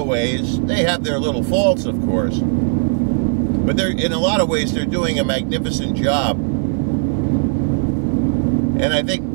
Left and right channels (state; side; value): silent; left; digital silence